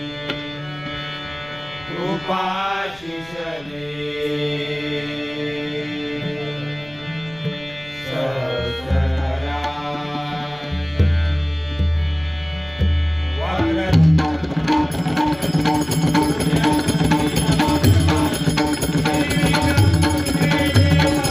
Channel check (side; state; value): left; noise; rumble, 23 dB below the sound